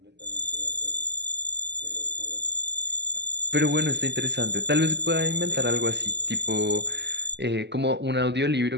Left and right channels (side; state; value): left; late; 0.50 ms